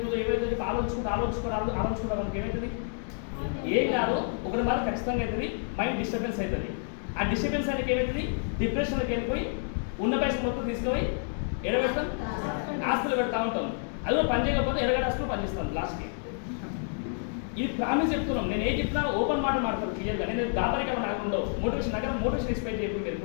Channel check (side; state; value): right; silent; 58 dB below the other